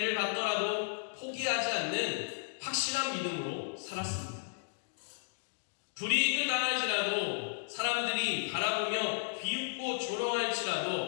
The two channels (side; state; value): right; silent; digital silence